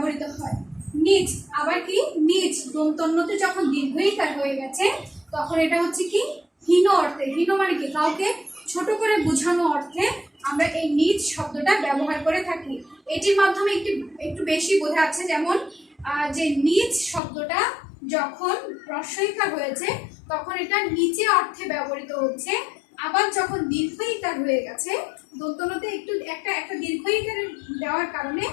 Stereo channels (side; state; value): right; drops out; at 17.2 s